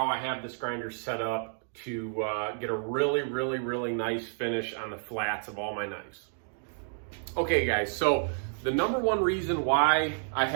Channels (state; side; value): silent; left; 58 dB below the other